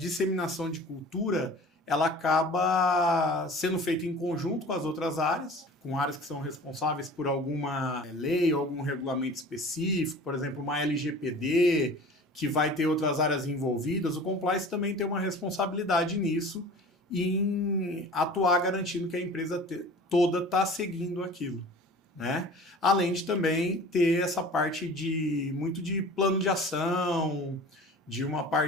de cultura, ela acaba sendo feita em conjunto com as outras áreas, com áreas que são responsáveis por alguma lei ou algum regulamento específico, por exemplo, uma LGPD, que vai ter outras áreas envolvidas, o compliance também tem uma responsabilidade nisso em atuar garantindo que a empresa toda está seguindo aquilo, né? Além de também ter essa parte muito de plano de ação, de uma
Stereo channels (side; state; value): both; normal; correlation 0.42